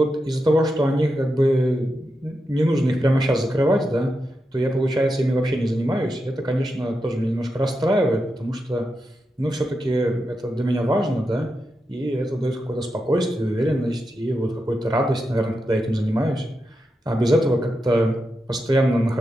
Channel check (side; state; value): both; normal; correlation 0.87